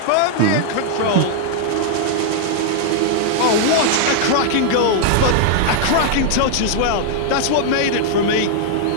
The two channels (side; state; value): both; different; correlation 0.00